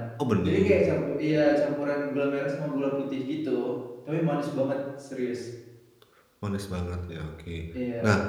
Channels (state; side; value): identical; both; correlation 1.00